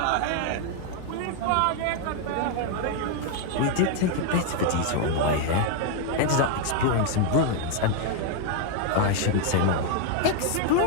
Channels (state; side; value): different; both; correlation 0.00